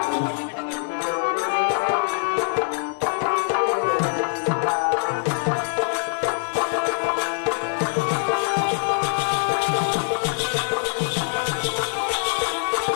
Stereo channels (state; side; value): silent; right; 63 dB below the other